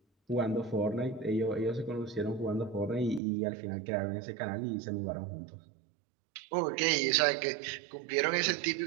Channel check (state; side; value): drops out; left; at 3.2 s